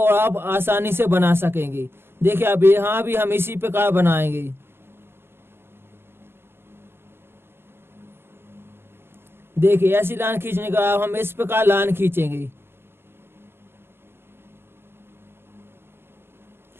आप आसानी से बना सकेंगे। देखिए अब यहाँ भी हम इसी प्रकार बनाएंगे। देखिए ऐसी लाइन खींचने के बाद हम इस प्रकार लाइन खींचेंगे।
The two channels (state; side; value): late; left; 0.11 ms